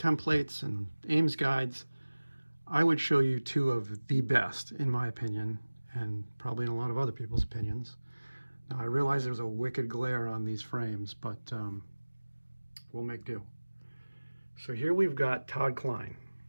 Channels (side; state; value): both; inverted; correlation -1.00